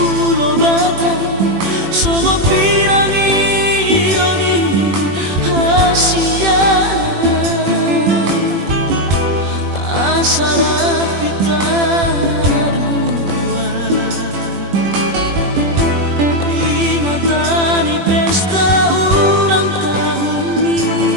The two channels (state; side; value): late; left; 21 ms